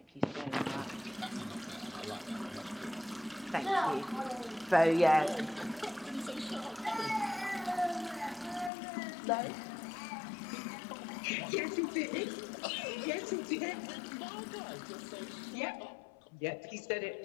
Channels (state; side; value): drops out; right; at 8.7 s